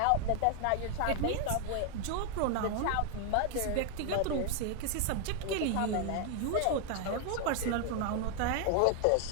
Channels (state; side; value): different; both; correlation 0.00